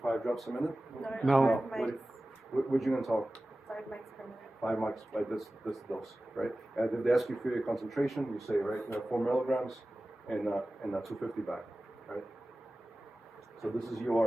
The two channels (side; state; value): both; normal; correlation 0.96